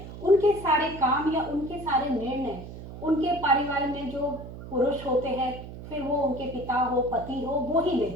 उनके सारे काम या उनके सारे निर्णय उनके परिवार में जो पुरुष होते हैं, फिर वो उनके पिता हो, पति हो, वो ही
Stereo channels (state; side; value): noise; right; hum, 12 dB below the sound